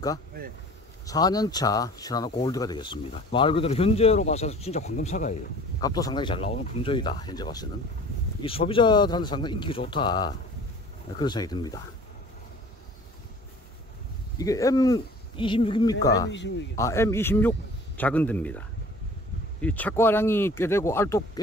네. 4년차 시나노 골드가 되겠습니다. 말 그대로 현재로 봐서 진짜 황금사과예요. 값도 상당히 잘 나오는 품종이다. 현재 봐서는 이 소비자들한테 상당히 인기가 좋다, 그런 생각이 듭니다. 이게 M26입니까? 네, M26이요. M26 작은 데입니다. 이 착과량이 꽤 되고 알도 꽤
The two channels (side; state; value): both; normal; correlation 0.47